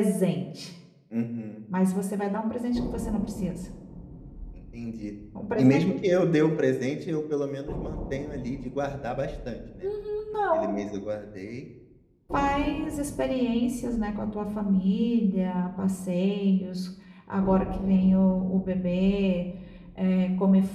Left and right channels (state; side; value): identical; both; correlation 1.00